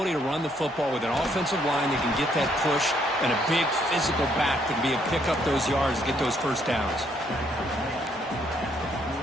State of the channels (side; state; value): both; normal; correlation 0.70